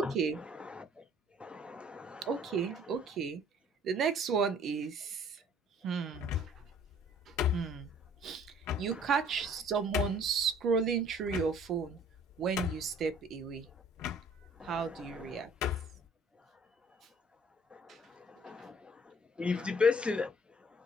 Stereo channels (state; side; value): normal; both; correlation 0.55